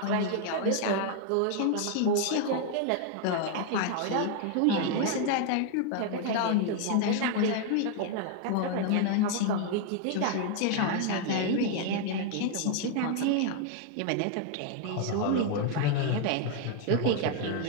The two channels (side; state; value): both; different; correlation 0.00